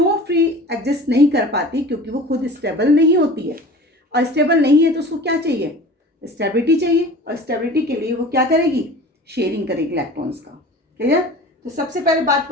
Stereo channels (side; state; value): both; normal; correlation 0.40